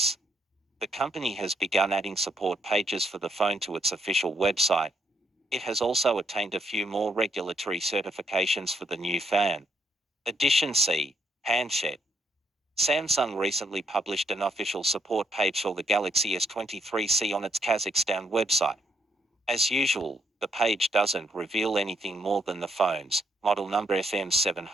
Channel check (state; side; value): normal; both; correlation 0.74